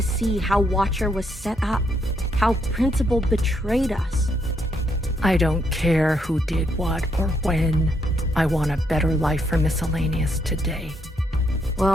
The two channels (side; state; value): both; normal; correlation 0.75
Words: see how Watcher was set up, how Principal betrayed us. I don't care who did what or when. I want a better life for Miscellaneous today.